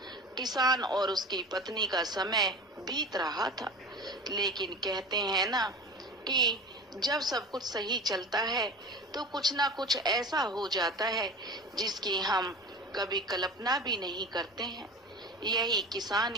किसान और उसकी पत्नी का समय बीत रहा था। लेकिन कहते हैं ना कि जब सब कुछ सही चलता है तो कुछ ना कुछ ऐसा हो जाता है जिसकी हम कभी कल्पना भी नहीं करते हैं। यही किसान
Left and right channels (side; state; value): both; normal; correlation 0.33